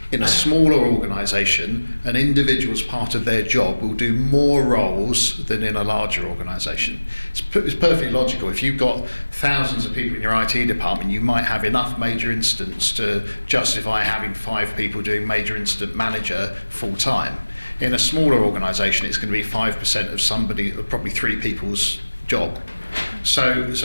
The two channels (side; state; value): both; inverted; correlation -1.00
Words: in a smaller organisation, an individual as part of their job will do more roles than in a larger organisation. It's perfectly logical. If you've got thousands of people in your IT department, you might have enough major incidents to justify having 5 people doing major incident manager full time. In a smaller organisation, it's going to be 5% of probably 3 people's job. So